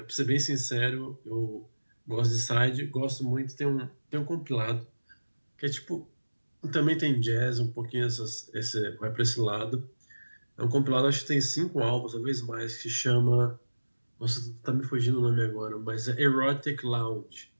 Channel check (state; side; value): inverted; both; correlation -1.00